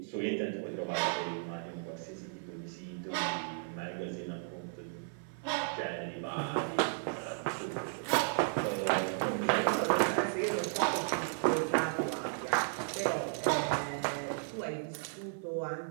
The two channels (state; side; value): silent; left; 55 dB below the other